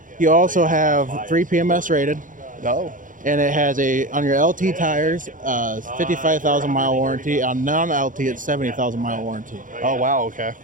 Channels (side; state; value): left; late; 0.38 ms